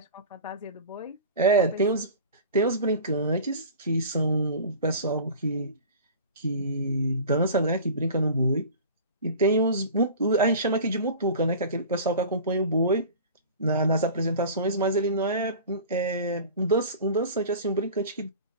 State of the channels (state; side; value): inverted; both; correlation -0.38